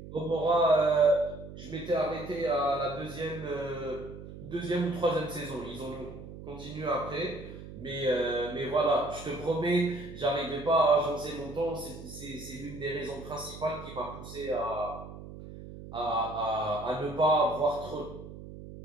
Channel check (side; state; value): right; noise; hum, 13 dB below the sound